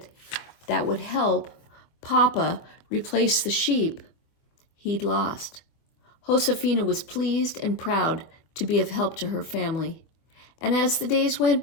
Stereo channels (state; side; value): late; right; 24 ms